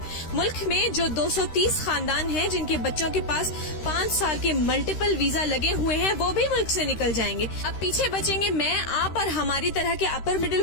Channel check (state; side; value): late; right; 13 ms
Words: ملک میں جو 230 خاندان ہیں جن کے بچوں کے پاس 5 سال کے ملٹیپل ویزا لگے ہوئے ہیں، وہ بھی ملک سے نکل جائیں گے۔ اب پیچھے بچیں گے میں، آپ اور ہماری طرح کے upper middle